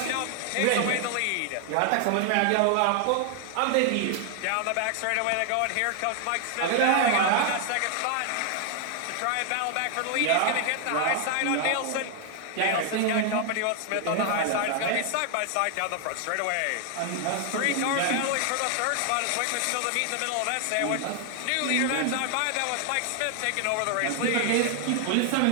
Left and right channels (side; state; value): both; different; correlation 0.00